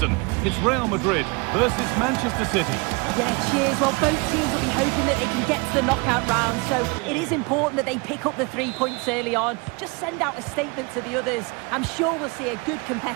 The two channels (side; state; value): left; quieter; 29.1 dB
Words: It's Real Madrid versus Manchester City. Yeah, cheers. Well, both teams will be hoping that they can get to the knockout round, so it is important that they pick up the 3 points early on. Just send out a statement to the others. I'm sure we'll see a good